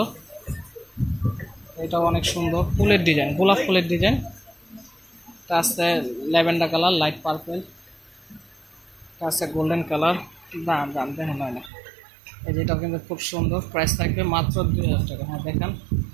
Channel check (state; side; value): drops out; left; at 11.7 s